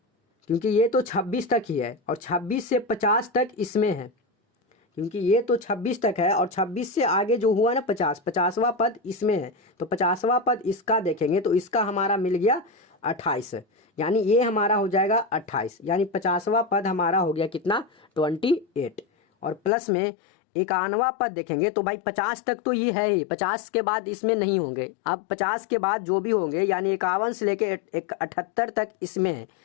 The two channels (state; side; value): drops out; right; at 19.7 s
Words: क्योंकि ये तो 26 तक ही है और 26 से 50 तक इसमें है, क्योंकि ये तो 26 तक है और 26 से आगे जो हुआ ना 50वां पद इसमें है। तो 50वां पद इसका देखेंगे तो इसका हमारा मिल गया 28, यानी ये हमारा हो जाएगा 28, यानी 50वां पद हमारा हो गया कितना 28। और प्लस में 51वां पद देखेंगे तो भाई 50 तक तो ये है ही, 50 के बाद इसमें नहीं होंगे। अब 50 के बाद जो भी होंगे यानी 51 से लेके 78 तक इसमें है,